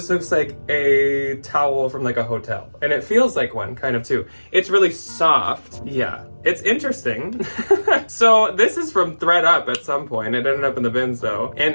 looks like a towel from like a hotel, and it feels like one kind of too. It's really soft. Yeah, it's interesting. So this is from ThredUp at some point. It ended up in the bins though,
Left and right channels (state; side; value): inverted; both; correlation -1.00